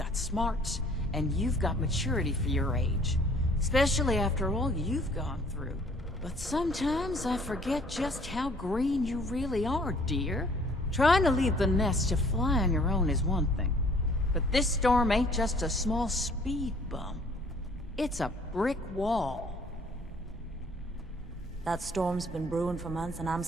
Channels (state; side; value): normal; both; correlation 0.57